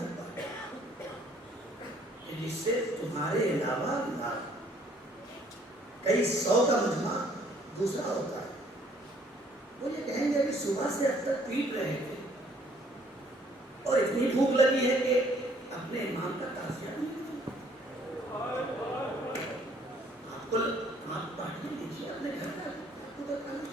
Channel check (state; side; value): normal; both; correlation 0.61